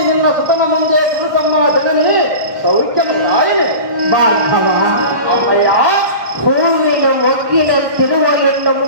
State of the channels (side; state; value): left; late; 1.1 ms